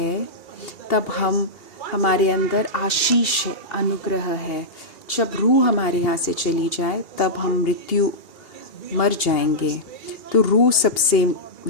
तब हमारे अंदर आशीष है, अनुग्रह है। जब रूह हमारे यहाँ से चली जाए तब हम मृत्यु मर जाएंगे। तो रूह सबसे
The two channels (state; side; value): late; right; 2.8 ms